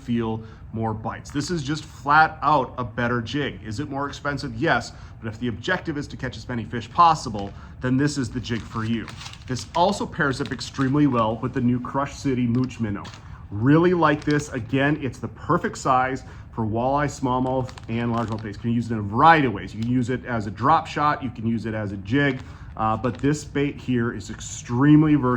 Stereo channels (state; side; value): identical; both; correlation 1.00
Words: more bites. This is just flat out a better jig. Is it more expensive? Yes, but if the objective is to catch as many fish possible, then this is the jig for you. This also pairs up extremely well with the new Crush City Mooch Minnow. Really like this. Again, it's the perfect size for walleye, smallmouth, and largemouth baits. You can use it in a variety of ways. You can use it as a drop shot, you can use it as a jig, but this bait here is extremely